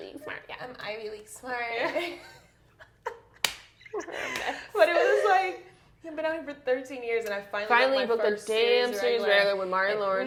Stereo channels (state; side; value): identical; both; correlation 1.00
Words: smart. Yeah. I'm Ivy League smart. But it was like, I've been out here for 13 years, and I finally booked a damn series regular with Martin